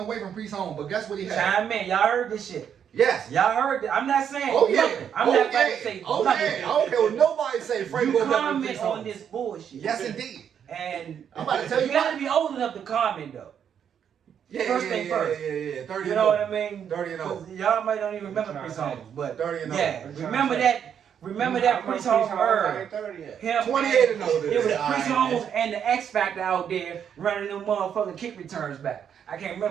from Priest Holmes, but guess what he had? Chime in. Y'all heard this shit. Yes. Y'all heard that? I'm not saying Oh yeah. nothing. I'm oh, not about yeah. to say Oh nothing. yeah. I don't care what nobody say. Frank You Gore better than comment Priest on Holmes. this bullshit. Yes, indeed. And I'm about to tell you gotta what. be old enough to comment though. Yeah, First yeah, thing yeah, first. Yeah. 30 You and know what over. I mean? 30 and over. 'Cause y'all might don't even remember What you Priest trying to Holmes, but 30 and yeah, over. remember that. Remember that Priest Holmes I era. ain't 30 yet. Him 28 and older. It was Yeah, Priest alright, Holmes and the X Factor out there running them motherfucking kick returns back. I can't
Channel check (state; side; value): quieter; left; 8.3 dB